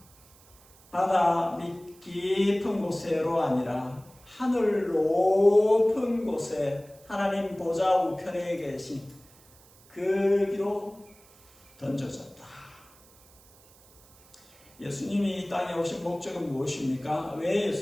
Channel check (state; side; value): noise; right; hiss, 27 dB below the sound